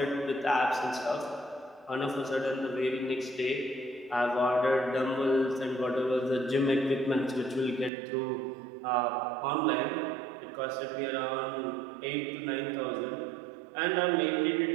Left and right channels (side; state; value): left; drops out; at 7.9 s